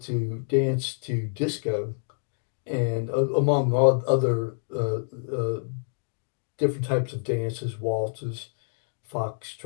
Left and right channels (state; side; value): silent; right; digital silence